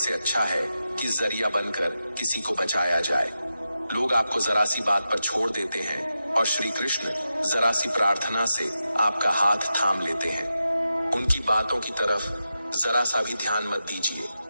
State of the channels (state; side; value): inverted; both; correlation -0.90